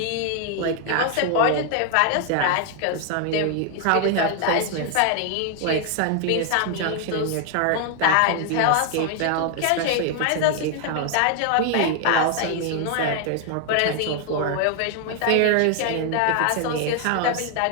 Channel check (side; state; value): both; different; correlation 0.00